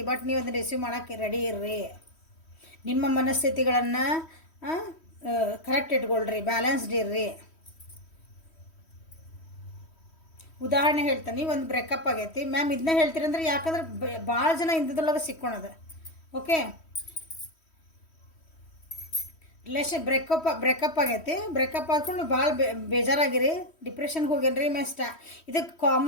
ಬಟ್ ನೀವು ಅದನ್ನು ರಿಸೀವ್ ಮಾಡೋಕ್ಕೆ ರೆಡಿ ಇರ್ರಿ. ನಿಮ್ಮ ಮನಸ್ಥಿತಿಗಳನ್ನು ಕರೆಕ್ಟ್ ಇಟ್ಕೊಳ್ರಿ, ಬ್ಯಾಲೆನ್ಸ್ಡ್ ಇರ್ರಿ. ಉದಾಹರಣೆ ಹೇಳ್ತಾನೆ, ಒಂದು ಬ್ರೇಕಪ್ ಆಗೈತಿ ಮ್ಯಾಮ್, ಇದನ್ನ ಹೇಳ್ತೀರಂದ್ರೆ ಯಾಕಂದ್ರೆ ಭಾಳ ಜನ ಇಂಥದ್ರೊಳಗೆ ಸಿಕ್ಕೊಳದ. ಓಕೆ, ಬ್ರೇಕಪ್ ಆಗೈತಿ, ಬ್ರೇಕಪ್ ಆದ್ಕೊಂಡು ಭಾಳ ಬೇಜಾರಾಗಿರಿ, ಡಿಪ್ರೆಷನ್ಗೆ ಹೋಗ್ಯಾನ್ರಿ. ಇದಕ್ಕೆ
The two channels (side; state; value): right; late; 3.1 ms